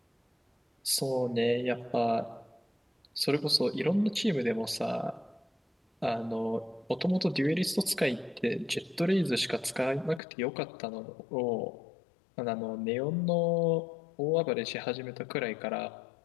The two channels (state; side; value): drops out; right; at 10.2 s